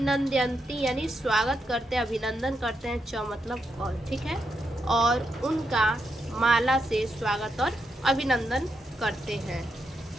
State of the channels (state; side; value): normal; both; correlation 0.83